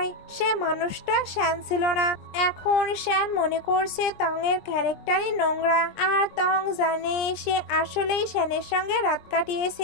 সে মানুষটা শ্যান ছিল না। এখন শ্যান মনে করছে টং এর ক্যারেক্টারই নোংরা, আর টং জানে সে আসলেই শ্যানের সঙ্গে রাত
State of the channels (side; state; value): right; late; 20 ms